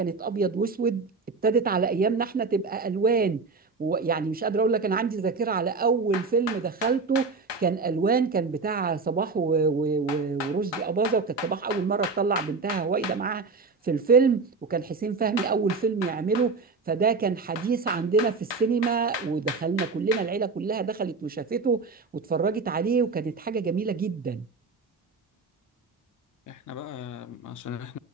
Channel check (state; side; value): quieter; left; 4.3 dB